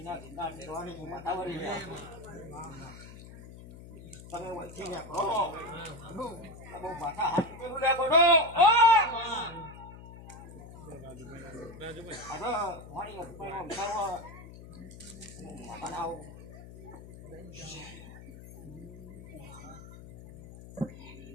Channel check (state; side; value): noise; left; hum, 15 dB below the sound